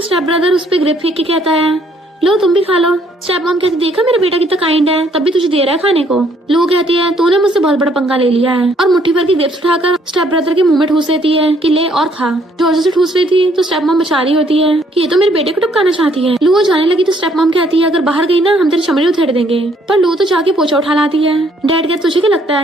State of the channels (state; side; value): normal; both; correlation 0.66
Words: ब्रदर उस पे ग्रेप फेंक के कहता है लो तुम भी खा लो। स्टेप मॉम कहती देखा मेरा बेटा कितना काइंड है, तब भी तुझे दे रहा है खाने को। लो कहती है तूने मुझसे बहुत बड़ा पंगा ले लिया है, और मुट्ठी भर की ग्रेप्स उठाकर स्टेप ब्रदर के मुंह में ठूस देती है कि ले और खा। जोर से ठूस रही थी तो स्टेप मॉम बचा रही होती है कि ये तो मेरे बेटे को टपकाना चाहती है। लू जाने लगी तो स्टेप मॉम कहती है अगर बाहर गई ना हम तेरी चमड़ी उधेड़ देंगे। पर लू तो जाके पोछा उठा लाती है। डैड कहते तुझे क्या लगता